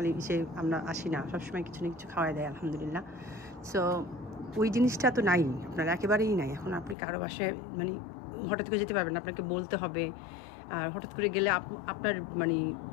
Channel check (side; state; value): right; drops out; at 7.0 s